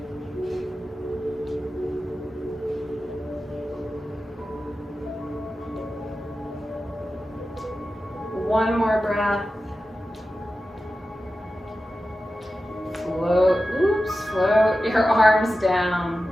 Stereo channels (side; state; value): both; normal; correlation 0.93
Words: One more breath. Float your arms down.